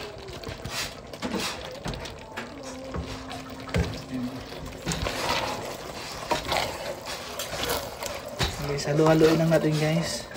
Guys, halo-haloin lang natin guys.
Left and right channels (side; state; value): both; identical; correlation 1.00